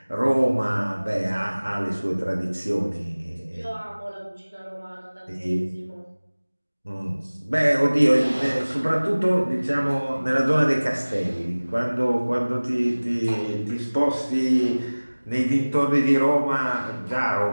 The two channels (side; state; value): both; inverted; correlation -1.00